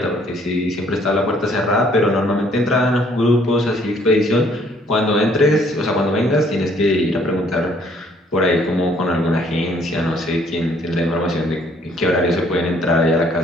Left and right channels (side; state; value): both; normal; correlation 0.63